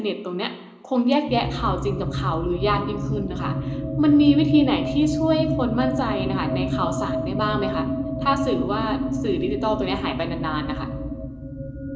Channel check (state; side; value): identical; both; correlation 1.00